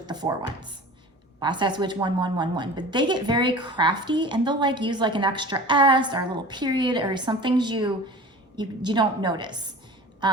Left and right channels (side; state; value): both; normal; correlation 0.39